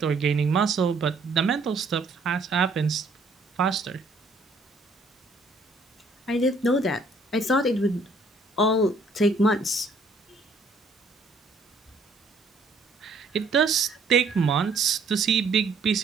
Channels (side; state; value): left; quieter; 3.3 dB